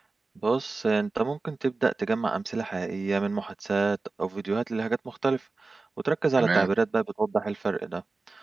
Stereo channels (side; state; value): left; quieter; 3.7 dB